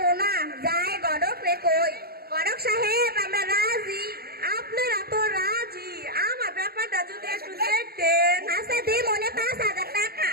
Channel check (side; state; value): left; late; 0.45 ms